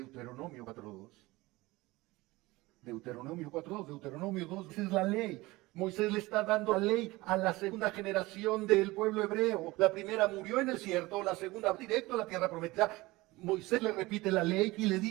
4.2. Deuteronomio 4.2, Deuteronomio 2, esa es la ley. Moisés le está dando la ley a la segunda generación del pueblo hebreo. La primera murió en el desierto, la segunda directo a la tierra prometida. Moisés le repite la ley y le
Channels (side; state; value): left; quieter; 20.6 dB